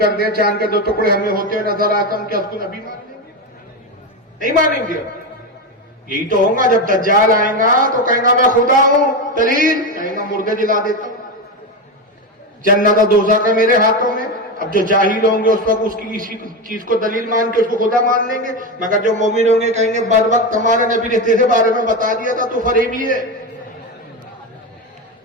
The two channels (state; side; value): normal; both; correlation 0.15